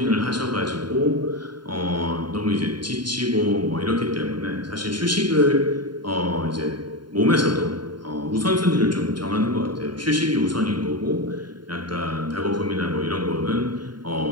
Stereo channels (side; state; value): left; late; 0.72 ms